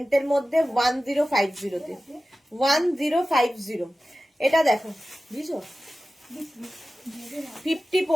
মধ্যে 1050-তে 1050। এটা দেখো বুঝছো, 50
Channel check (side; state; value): both; normal; correlation 0.95